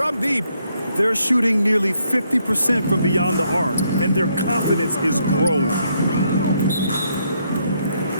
deep. They're shooting nearly 50% from beyond the arc, and their confidence is growing.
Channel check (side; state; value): both; inverted; correlation -0.74